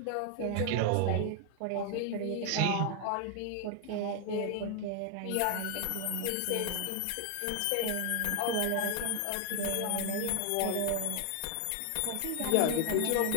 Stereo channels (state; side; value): different; both; correlation 0.00